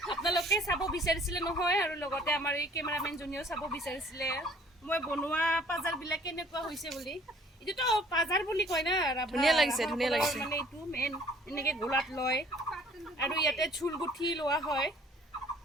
আপোনালোকে চাব বিচাৰিছিলে নহয় আৰু লগতে আমাৰ এই কেমেৰামেন জনীও চাব বিচাৰিছিলে মই বনোৱা পাজাৰবিলাক কেনেকুৱা হৈছে বুলি এইটোতো পাজাৰ বুলি কয় না ধুনীয়া লাগিছে মানে এইটো মেইন এনেকে গোলাত লয় আৰু ইয়াতে চুল গুঠি লোৱা হয়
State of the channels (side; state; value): both; normal; correlation 0.55